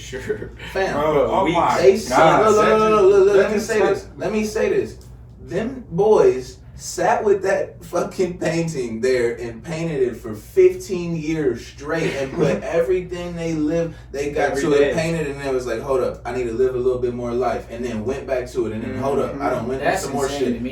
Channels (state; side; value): identical; both; correlation 1.00